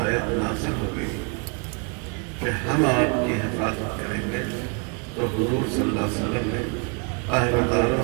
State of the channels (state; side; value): quieter; left; 34.4 dB